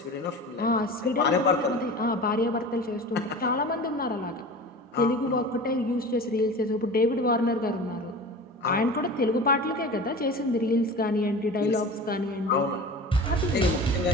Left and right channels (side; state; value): both; normal; correlation 0.35